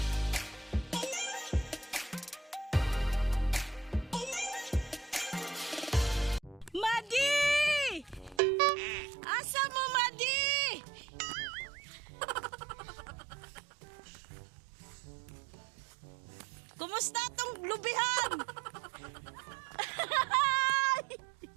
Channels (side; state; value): left; drops out; at 8.4 s